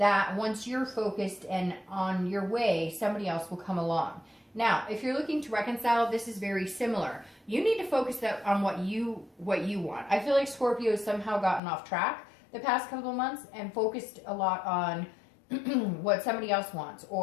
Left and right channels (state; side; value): drops out; right; at 11.6 s